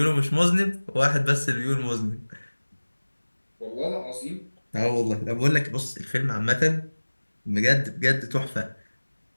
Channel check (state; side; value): inverted; both; correlation -1.00